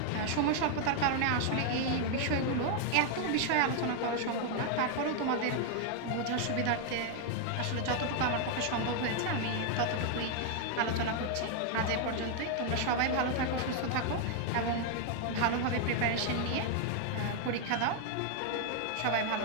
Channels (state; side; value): different; both; correlation 0.00